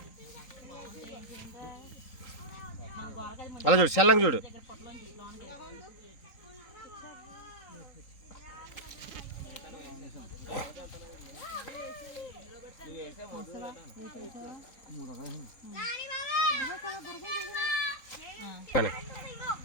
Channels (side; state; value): right; late; 3.8 ms